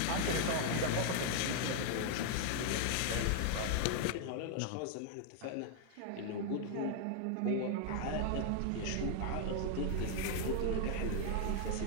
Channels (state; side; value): different; both; correlation 0.00